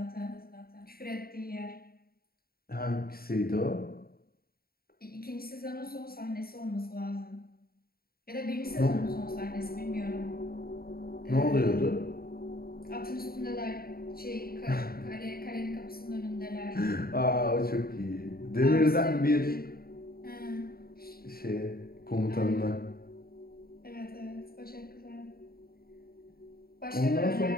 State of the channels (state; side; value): late; right; 0.44 ms